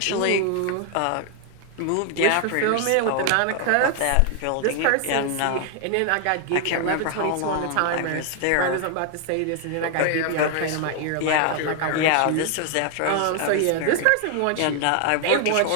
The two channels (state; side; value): different; both; correlation 0.00